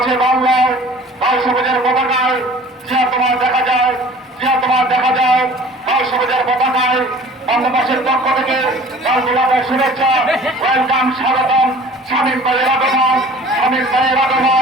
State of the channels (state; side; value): normal; both; correlation 0.47